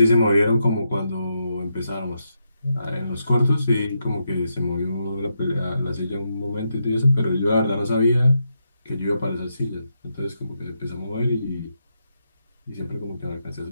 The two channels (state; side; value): inverted; both; correlation -0.83